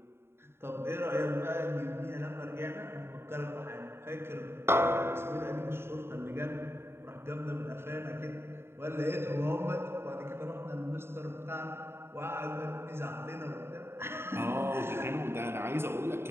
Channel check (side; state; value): left; late; 0.12 ms